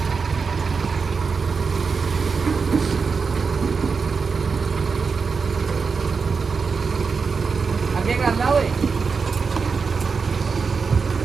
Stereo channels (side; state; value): left; quieter; 5.1 dB